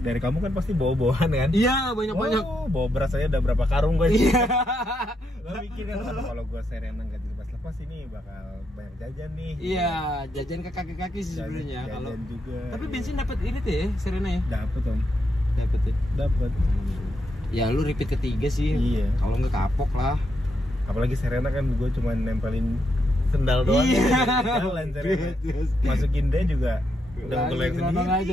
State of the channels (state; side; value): normal; both; correlation 0.80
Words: kamu kan pasti bawa-bawaan kan? Iya, banyak-banyak. Oh, bawa beras aja udah berapa karung gue. Iya. Lo mikir kan "Aduh, kalau gue Serena nggak dilepas-lepas ini bakal banyak jajan nih. Iya, jajan ke kaki-kaki sih Jajan- sebenarnya jajan kalau. juga. Tapi iya. bensin dapat ini tuh ya, Serena ya. Dapet om, Dapat ya. dapet. Ya lu repeat ketiga sih. Iya. Kalau nggak kapok lah. Apalagi Serena kan gue cuma nempelin sendal doang. Iya. Jalan Serena. Masukin dia juga udah ngeleng Langsung sendiri.